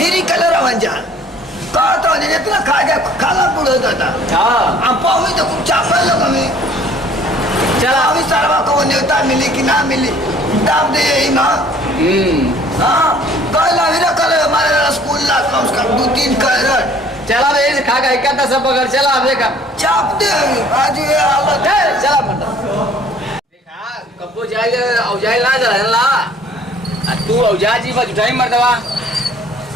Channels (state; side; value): normal; both; correlation 0.55